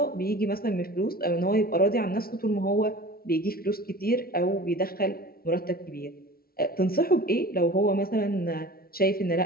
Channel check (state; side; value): late; right; 0.44 ms